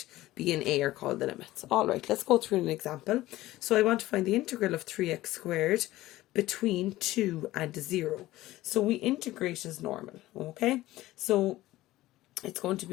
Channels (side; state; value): right; quieter; 16.7 dB